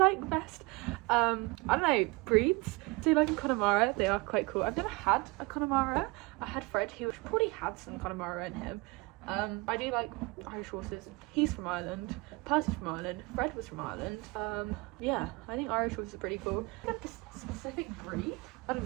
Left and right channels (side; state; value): left; quieter; 25.4 dB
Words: best? I don't know, breeds. So like a Connemara, they are quite cool. I've never had a Connemara. I had Fred, who probably had some Connemara in him. I do like Irish horses. He's from Ireland, Percy's from Ireland, Fred was from Ireland. Yeah, I think Irish horses are pretty cool. Like a specific breed? I don't